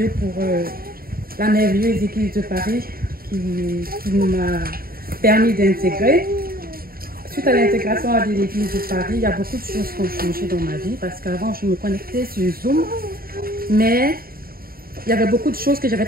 pour la merveilleuse église de Paris qui nous m'a permis d'intégrer. Suite à l'intégration de l'église de Paris, il y a beaucoup de choses qui ont changé dans ma vie parce qu'avant je me connectais sur Zoom, mais il y avait beaucoup de choses que je n'avais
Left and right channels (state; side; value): late; left; 0.43 ms